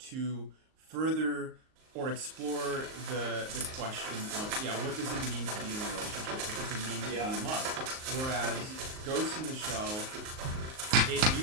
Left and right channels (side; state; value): left; late; 38 ms